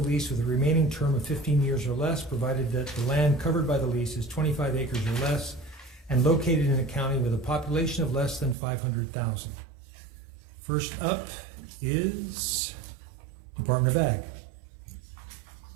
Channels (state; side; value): drops out; left; at 8.6 s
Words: with a remaining term of 15 years or less, provided that the land covered by the lease is 25 acres or less and located in a county with a population of less than 500,000. First up is Department of Ag.